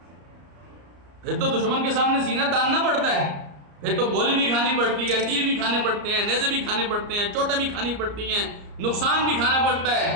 پھر تو دشمن کے سامنے سینہ تاننا پڑتا ہے، پھر تو گولی بھی کھانی پڑتی ہے، تیر بھی کھانے پڑتے ہیں، نیزے بھی کھانے پڑتے ہیں، چوٹیں بھی کھانی پڑتی ہیں، نقصان بھی کھانا پڑتا ہے.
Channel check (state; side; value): late; left; 34 ms